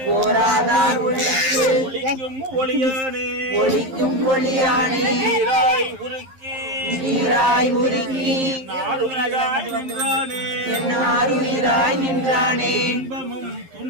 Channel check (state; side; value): late; left; 11 ms